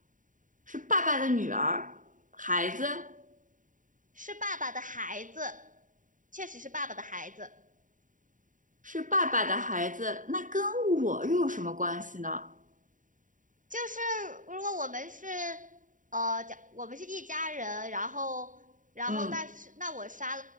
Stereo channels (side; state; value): left; late; 0.38 ms